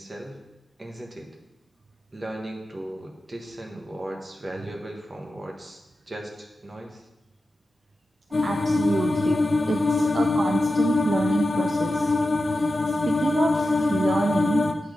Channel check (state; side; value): normal; both; correlation 0.92